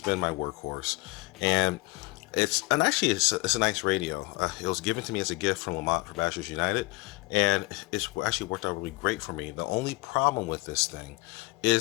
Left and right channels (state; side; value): quieter; right; 23.2 dB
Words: been my workhorse. And it's a nice radio. It was given to me as a gift from Lamont for Bachelors United, and it's actually worked out really great for me. The only problem with this thing